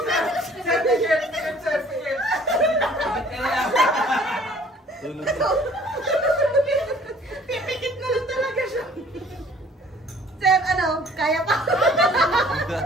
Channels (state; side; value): normal; both; correlation 0.54